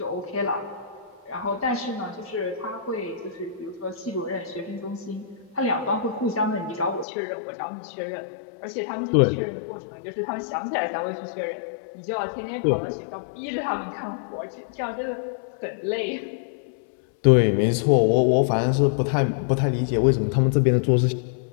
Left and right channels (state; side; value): drops out; right; at 7.1 s